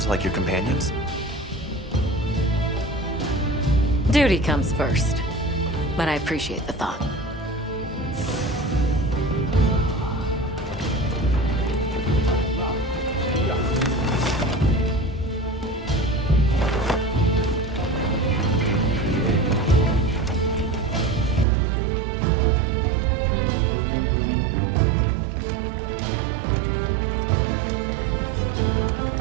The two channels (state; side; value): drops out; left; at 21.5 s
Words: like your companions? Duty comes first, but I appreciate the thought.